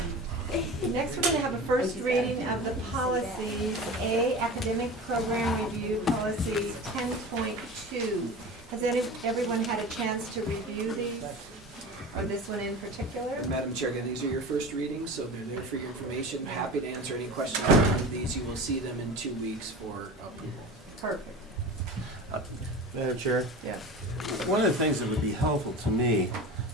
Next, we're going to have a first reading of the policies. A, Academic Program Review Policy 10.2. Has everyone had a chance to review these? Or this one in particular? Madam Chair, again, these are your first readings, so they're there for your information. Happy to answer any questions on these. You will see them in 2 weeks for approval. Perfect. Madam Chair? Yes. One of the things that would be helpful to me,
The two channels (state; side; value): normal; both; correlation 0.33